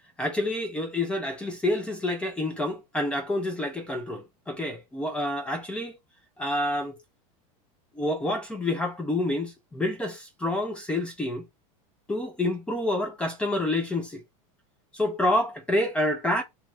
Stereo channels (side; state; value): both; normal; correlation 0.62